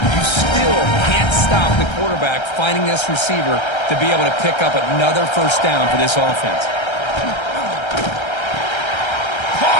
You still can't stop the quarterback finding this receiver to be able to pick up another 1st down for this offense.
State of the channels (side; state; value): right; late; 1.3 ms